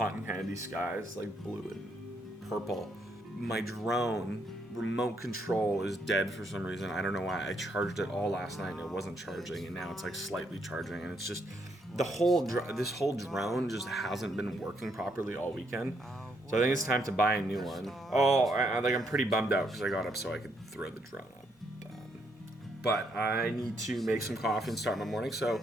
candy skies, like blue and purple. My drone remote control is dead for some reason. I don't know why. I charged it all last night and it wasn't charging, and now it's like slightly charging, and it's just this whole drone just hasn't been working properly all weekend. So I think it's time to buy a new one. I'm pretty bummed out because I got up so I could throw the drone up. But I need to make some coffee and start my morning, so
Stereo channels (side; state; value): both; normal; correlation 0.75